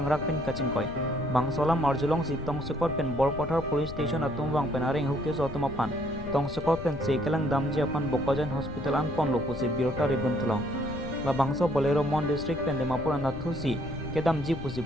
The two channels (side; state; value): left; noise; rumble, 11 dB below the sound